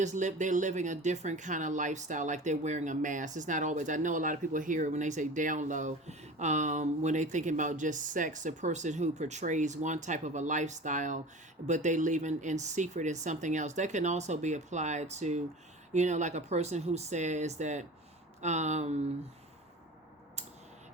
living a different kind of lifestyle, like they're wearing a mask. It's not always, I know a lot of people hear it when they say down low, when they thinking about just sex, a person who portrays one type of a lifestyle, but they live in secret in something else. That can also be applied to, like a person who says that, an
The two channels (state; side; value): normal; both; correlation 0.36